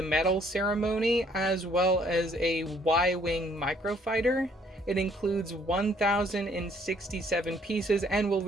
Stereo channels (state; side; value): normal; both; correlation 0.63